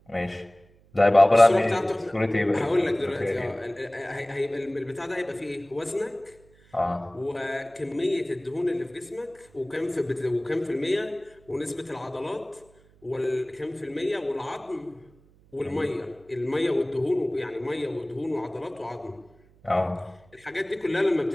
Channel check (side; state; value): right; noise; hum, 29 dB below the sound